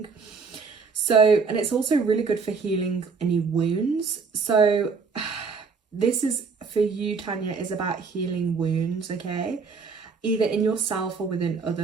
So, and it's also really good for healing any wounds. So this is for you, Tanya, is about healing wounds, okay? Either in yourself or within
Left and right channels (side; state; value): left; quieter; 5.0 dB